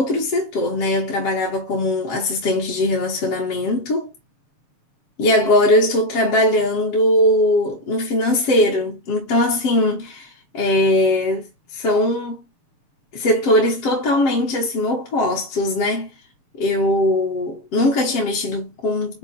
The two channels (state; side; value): late; right; 7.5 ms